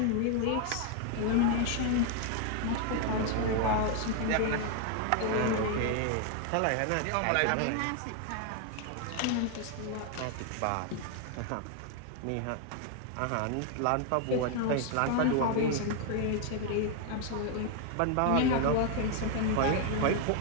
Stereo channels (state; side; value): different; both; correlation 0.01